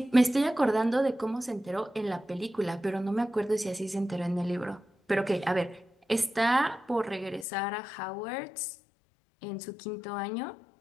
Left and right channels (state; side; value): drops out; right; at 7.5 s